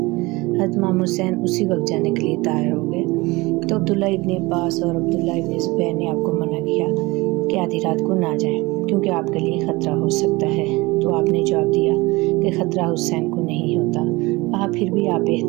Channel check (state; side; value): quieter; left; 22.7 dB